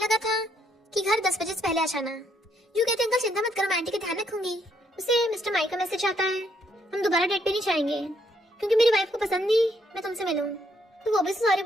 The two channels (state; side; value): normal; both; correlation 0.72